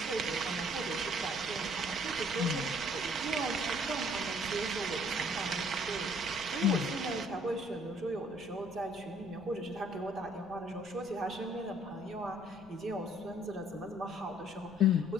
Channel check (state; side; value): noise; left; rumble, 22 dB below the sound